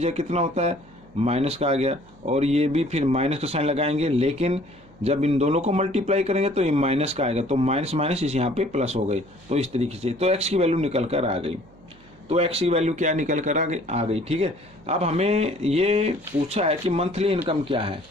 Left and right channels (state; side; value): noise; right; hum, 26 dB below the sound